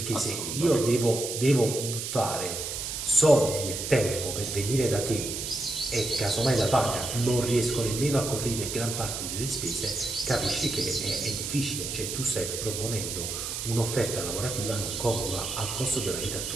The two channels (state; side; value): noise; right; hiss, 4 dB below the sound